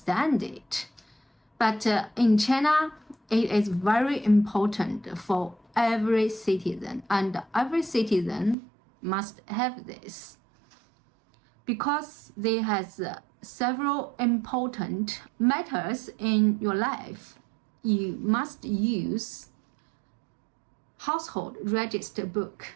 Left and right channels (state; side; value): drops out; left; at 8.6 s